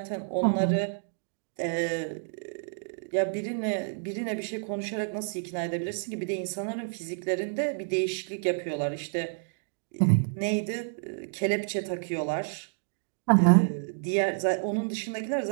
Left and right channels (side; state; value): left; silent; digital silence